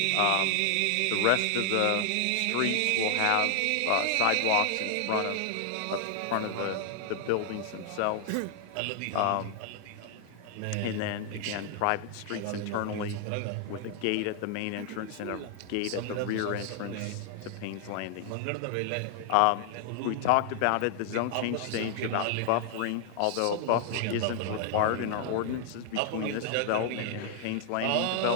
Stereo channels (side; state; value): both; different; correlation 0.00